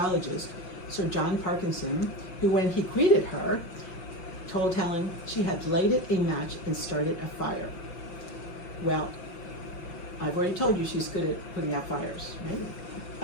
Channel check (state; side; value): late; right; 5.5 ms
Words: Sir John Parkinson, who, when he greeted her, told Helen she had lighted a match and started a fire. Well, I've already told you she's good at putting out fires,